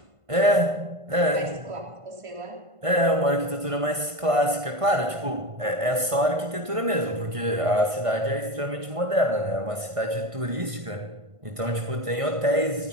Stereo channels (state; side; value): late; left; 1.5 ms